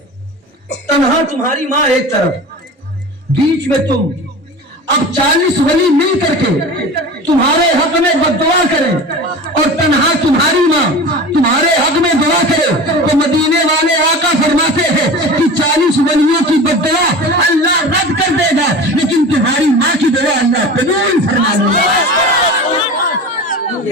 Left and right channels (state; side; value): normal; both; correlation 0.34